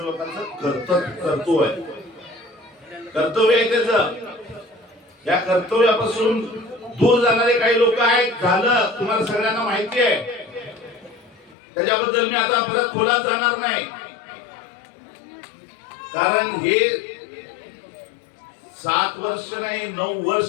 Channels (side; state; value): right; drops out; at 11.6 s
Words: कर्तव्य आहे, कर्तव्य आहे त्याचं। या कर्तव्यापासून दूर जाणारे काही लोक आहेत, झालं तुम्हाला सगळ्यांना माहिती आहे, त्याच्याबद्दल मी आता परत खोलात जाणार नाही, कारण हे 7 वर्ष नाही 9